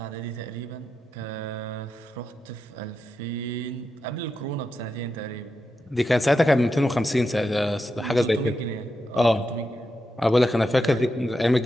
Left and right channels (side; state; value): both; normal; correlation 0.87